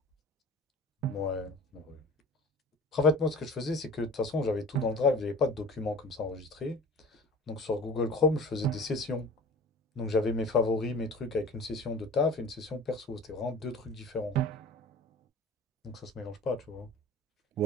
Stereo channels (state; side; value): normal; both; correlation 0.41